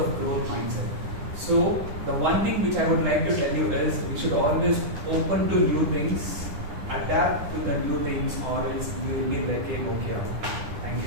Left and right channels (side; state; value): left; late; 10 ms